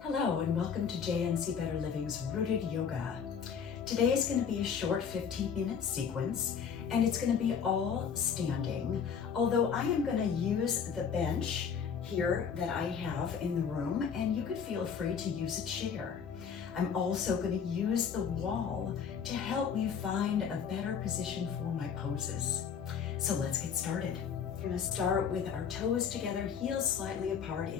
and welcome to JNC Better Living's Rooted Yoga. Today is going to be a short 15-minute sequence and it's going to be all standing, although I am going to use the bench here that I have in the room, and you could feel free to use a chair. I'm also going to use the wall to help me find a better position for my poses. So let's get started. We're going to start with our toes together, heels slightly apart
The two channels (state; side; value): quieter; right; 7.0 dB